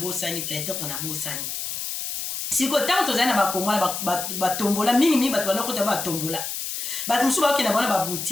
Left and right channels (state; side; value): noise; left; hiss, 4 dB below the sound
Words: peut-être na bosani siko ntango tozali na bakongo na batombola mingimingi bato bandokota batombola bato mosusu bakokende bona